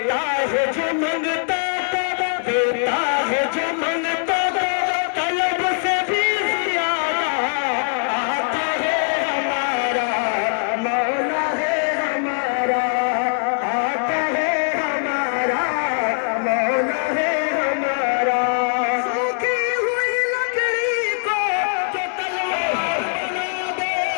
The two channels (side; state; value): right; silent; 65 dB below the other